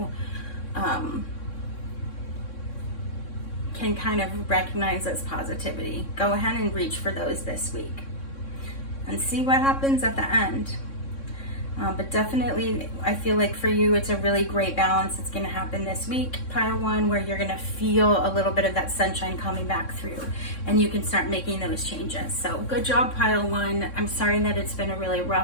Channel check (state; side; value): late; right; 3.6 ms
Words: can kind of recognize as positivity, go ahead and reach for those this week. and see what happens at the end. But definitely, I feel like for you, it's a really great balance. It's going to happen this week, pile 1, where you're going to feel a little bit of that sunshine coming back through, and you can start making those changes. So good job, pile 1. I'm sorry that it's been a really